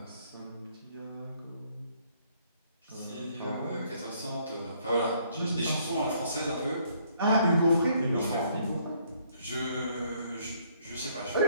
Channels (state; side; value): inverted; both; correlation -0.66